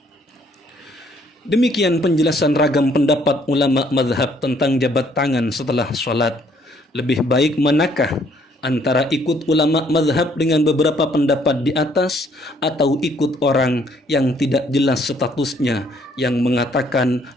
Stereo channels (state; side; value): normal; both; correlation 0.64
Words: Demikian penjelasan ragam pendapat ulama mazhab tentang jabat tangan setelah sholat. Lebih baik manakah antara ikut ulama mazhab dengan beberapa pendapat di atas, atau ikut orang yang tidak jelas statusnya, yang mengatakan